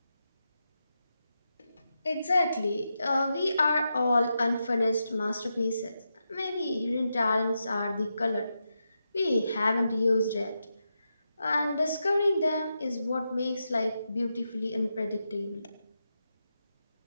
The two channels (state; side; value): inverted; both; correlation -0.87